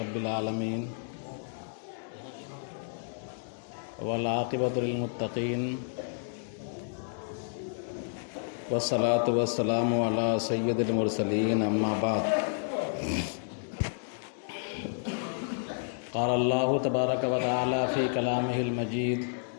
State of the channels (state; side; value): silent; right; 57 dB below the other